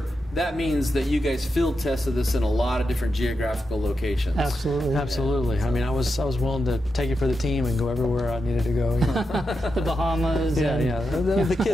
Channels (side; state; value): both; normal; correlation 0.88